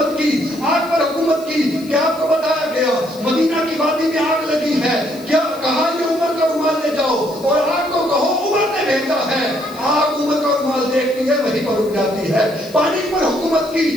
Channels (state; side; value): noise; left; hiss, 21 dB below the sound